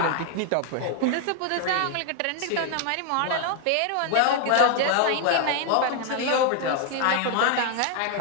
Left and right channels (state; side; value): different; both; correlation 0.00